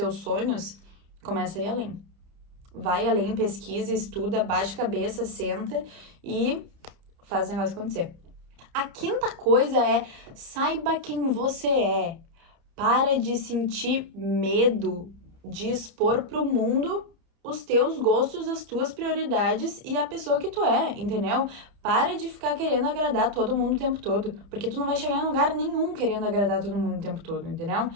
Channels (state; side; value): late; left; 30 ms